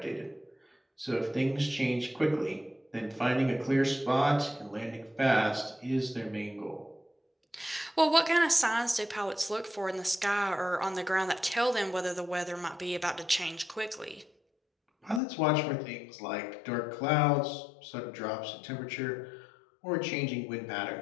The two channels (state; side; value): drops out; right; at 15.2 s